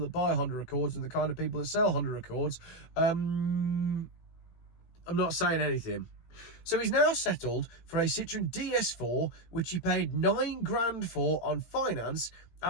that buy Honda Accords and the kind of people that sell Honda Accords, I'm not saying anything. So he's now settled for a Citroen DS4, which he paid £9,000 for on finance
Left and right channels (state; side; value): late; right; 17 ms